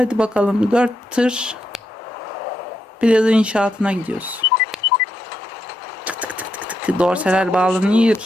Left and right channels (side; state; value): both; normal; correlation 0.81